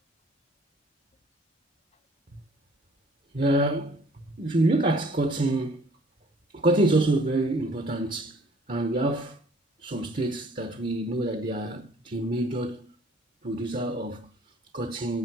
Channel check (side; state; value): both; normal; correlation 0.56